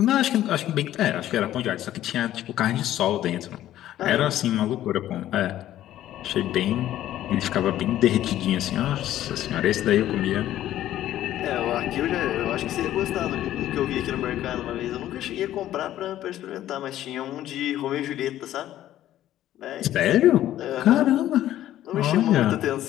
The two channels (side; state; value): right; quieter; 13.0 dB